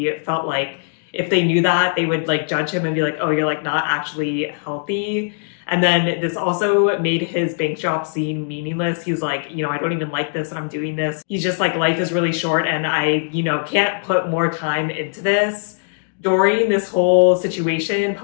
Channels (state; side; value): silent; right; digital silence